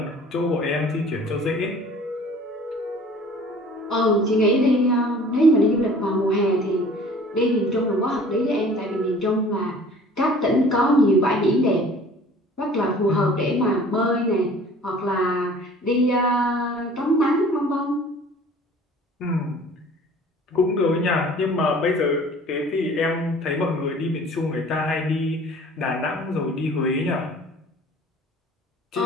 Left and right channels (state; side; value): normal; both; correlation 0.49